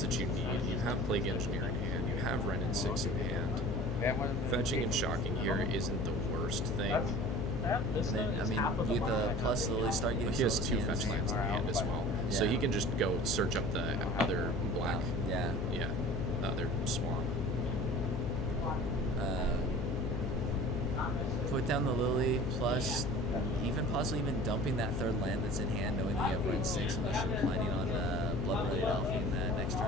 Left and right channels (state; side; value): noise; left; hum, 1 dB below the sound